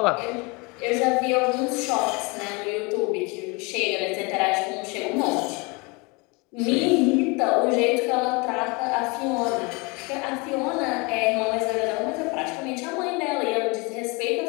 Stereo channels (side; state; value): right; quieter; 27.9 dB